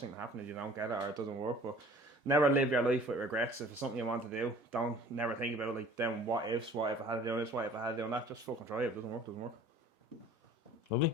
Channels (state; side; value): normal; both; correlation 0.49